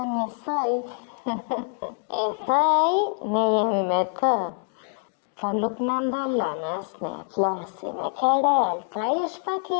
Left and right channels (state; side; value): silent; right; 60 dB below the other